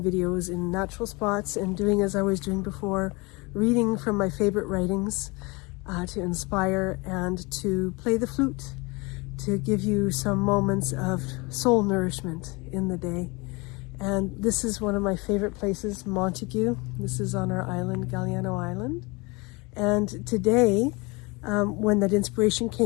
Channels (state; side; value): quieter; right; 26.7 dB